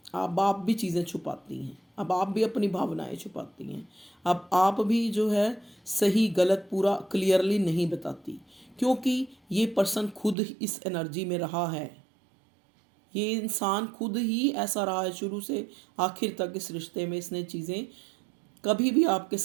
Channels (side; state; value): left; drops out; at 10.4 s